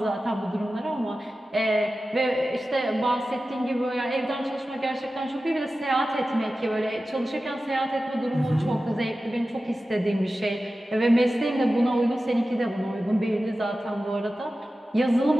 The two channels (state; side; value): normal; both; correlation 0.94